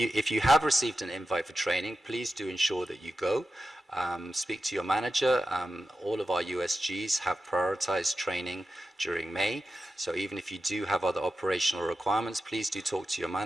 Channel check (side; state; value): both; normal; correlation 0.91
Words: you have received an invite for training, please do ensure that you go. Speak to your manager. All of our USGs have prioritized training during May. So even if you do have other operational requirements, please do talk to your